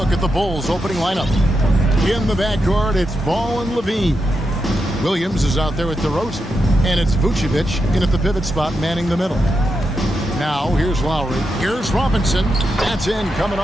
at the Bulls' opening lineup. In the backcourt, it's Ball and Levine. Williams is out there with DeRozan. And it's Vucevic in at the pivot spot, manning the middle. Now, here's Lowry. Here's Robinson. That's in, coming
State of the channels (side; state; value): both; normal; correlation 0.86